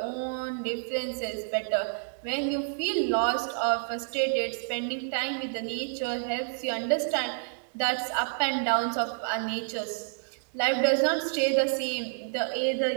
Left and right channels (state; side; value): silent; left; digital silence